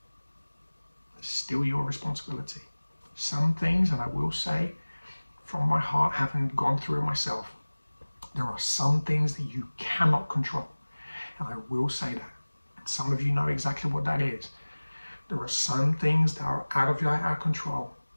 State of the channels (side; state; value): both; inverted; correlation -1.00